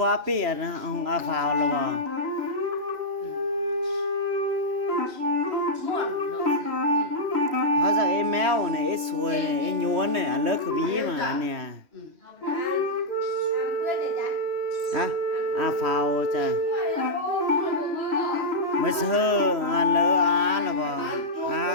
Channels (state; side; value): late; left; 3.0 ms